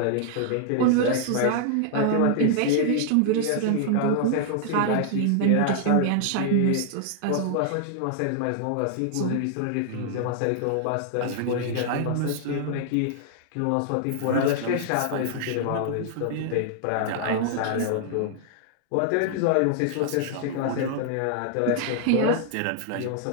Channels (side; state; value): both; different; correlation 0.00